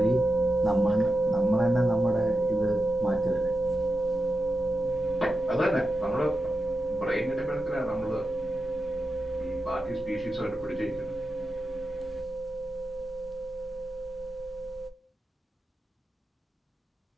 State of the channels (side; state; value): both; normal; correlation 0.90